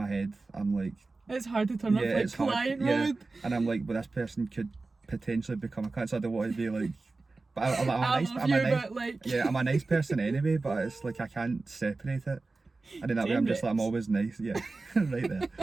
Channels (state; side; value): quieter; left; 3.6 dB